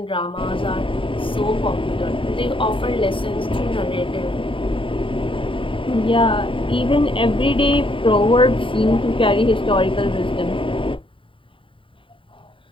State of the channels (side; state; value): right; late; 0.25 ms